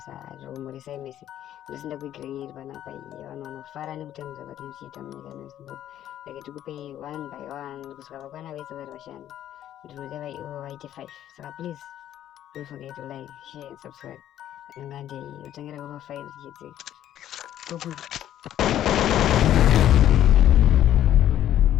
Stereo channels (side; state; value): right; quieter; 11.7 dB